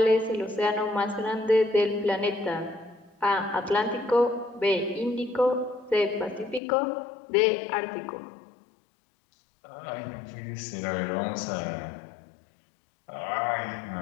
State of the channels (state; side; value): drops out; right; at 6.6 s